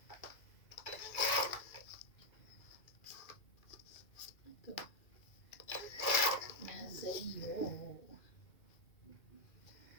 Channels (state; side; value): late; right; 2.4 ms